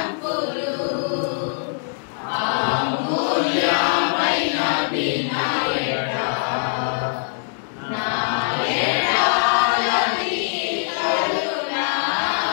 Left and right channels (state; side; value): silent; right; digital silence